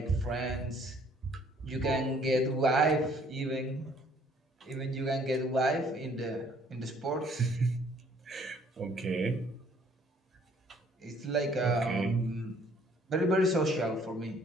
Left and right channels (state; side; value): normal; both; correlation 0.60